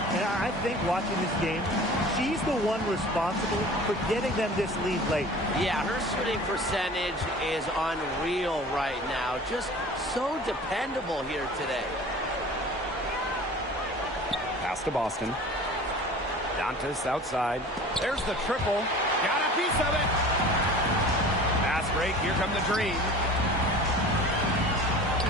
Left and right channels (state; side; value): normal; both; correlation 0.42